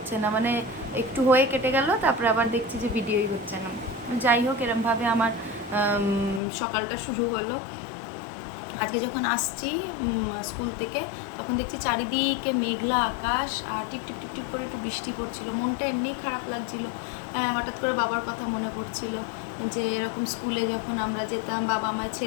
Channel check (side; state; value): right; drops out; at 6.4 s